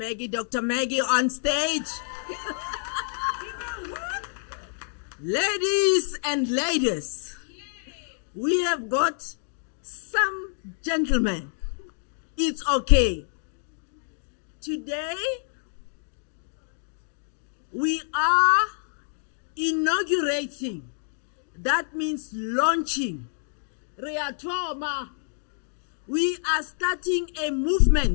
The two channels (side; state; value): right; silent; digital silence